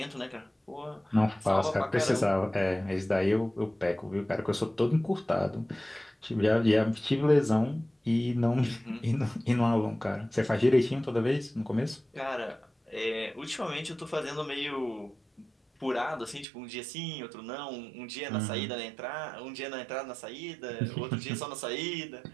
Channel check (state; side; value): drops out; left; at 16.4 s